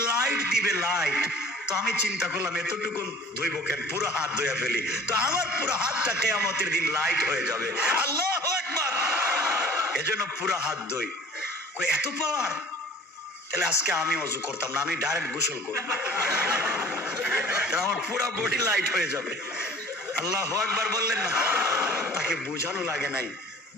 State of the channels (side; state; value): both; normal; correlation 0.47